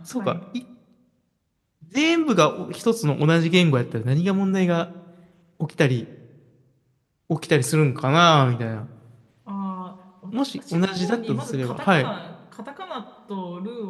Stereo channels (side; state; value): both; identical; correlation 1.00